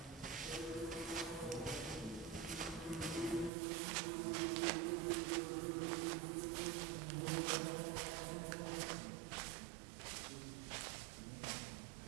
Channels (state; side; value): drops out; left; at 3.5 s